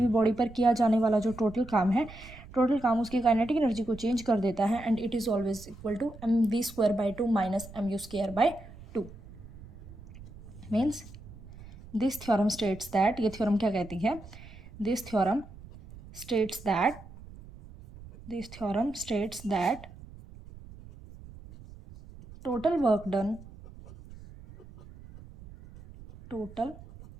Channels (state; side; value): noise; right; rumble, 18 dB below the sound